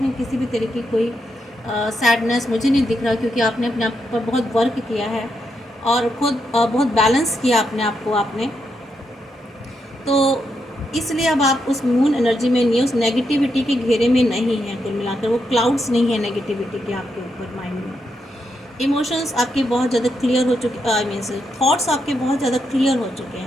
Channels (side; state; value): both; normal; correlation 0.82